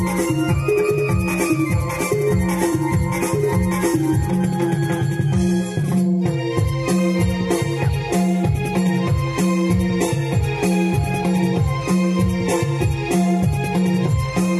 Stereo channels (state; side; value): identical; both; correlation 1.00